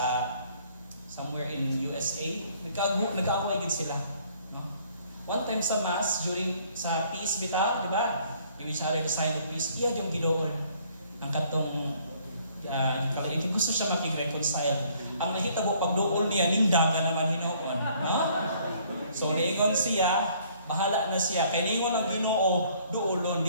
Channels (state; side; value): inverted; both; correlation -0.61